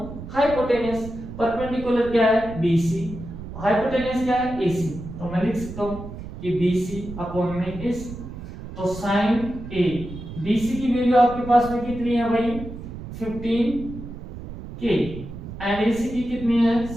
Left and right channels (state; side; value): noise; right; rumble, 11 dB below the sound